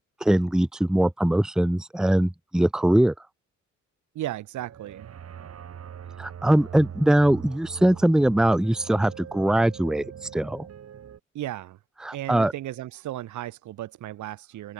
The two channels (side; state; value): both; normal; correlation 0.96